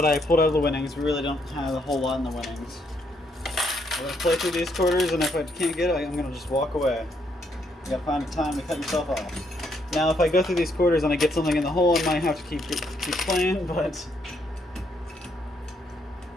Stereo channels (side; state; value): both; normal; correlation 0.73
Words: I pulled out of the winnings. We really don't have a whole lot in the winnings. I'm going to play through these quarters, and if I can't get it, I'm going to just walk away. You got to find a time to cut yourself off. Now, if I go through these quarters and I get something in the hole, I might have to keep playing, but